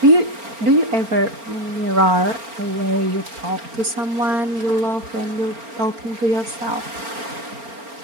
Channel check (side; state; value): left; late; 4.4 ms